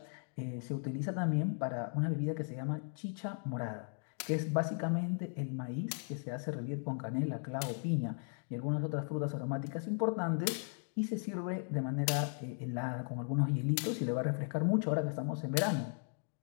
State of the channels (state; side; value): silent; right; 53 dB below the other